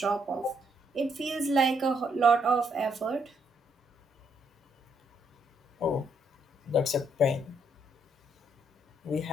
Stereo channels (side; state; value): both; normal; correlation 0.73